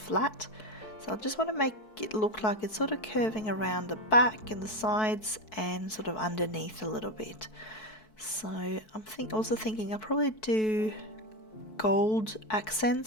So I just want to make it look like it's sort of curving around the back and the sides and sort of underneath a little bit. So I'm also thinking I'll probably do gold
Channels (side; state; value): right; late; 4.6 ms